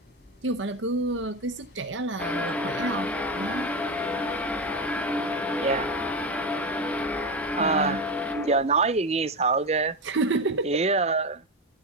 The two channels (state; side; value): normal; both; correlation 0.17